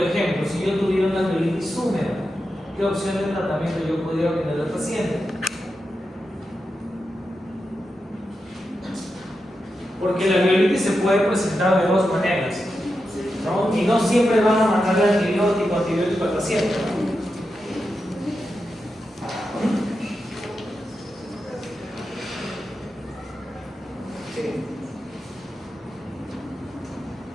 ejemplo, si yo tuviera una alveolitis húmeda, ¿qué opción de tratamiento yo pudiera obtener al paciente? Porque la alveolitis se puede presentar de dos maneras, ¿no? Y no siempre van a mandarle antibiótico al paciente, ¿no? Sí.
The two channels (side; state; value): both; normal; correlation 0.89